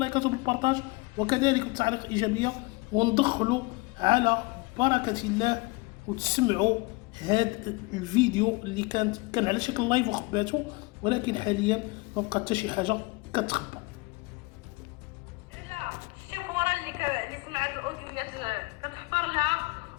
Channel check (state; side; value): quieter; right; 25.7 dB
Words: وبالبارطاج وكذلك بالتعليق الايجابيه، وندخلوا على بركه الله وتسمعوا هذا الفيديو اللي كان على شكل لايف وخباته، ولكن حاليا ما بقى حتى شي حاجه كتخبى. على الشيفوره اللي سمعت الاوديوات كتحفر لها